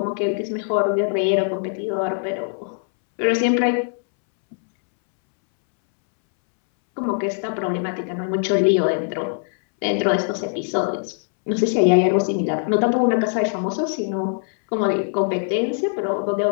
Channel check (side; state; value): right; silent; 65 dB below the other